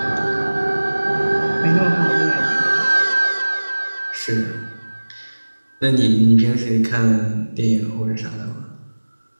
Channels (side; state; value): both; inverted; correlation -1.00